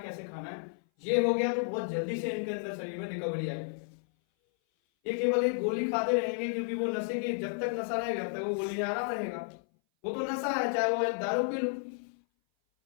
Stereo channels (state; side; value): silent; right; 56 dB below the other